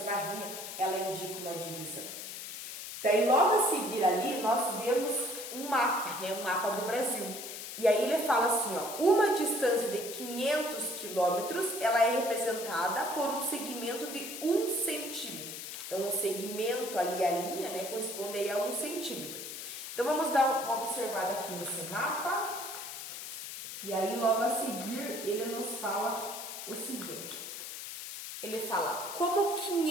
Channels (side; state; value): left; noise; hiss, 8 dB below the sound